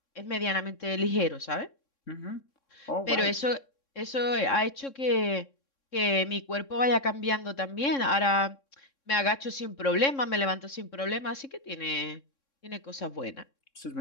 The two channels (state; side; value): late; right; 3.6 ms